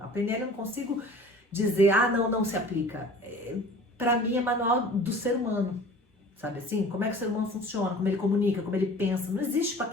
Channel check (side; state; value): both; normal; correlation 0.44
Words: PNL eu não consigo dizer, não se aplica. Para mim é manual do ser humano, sabe assim? Como é que o ser humano funciona, como ele comunica, como ele pensa. Não existe para